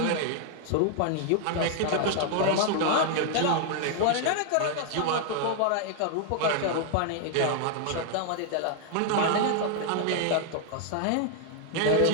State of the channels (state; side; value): different; both; correlation 0.00